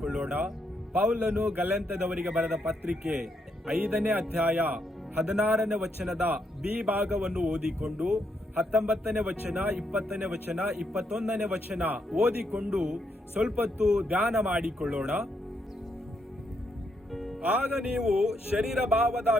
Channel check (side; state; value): both; normal; correlation 0.78